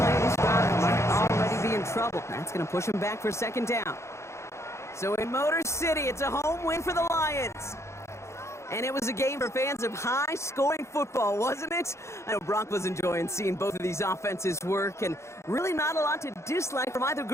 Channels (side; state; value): right; late; 0.13 ms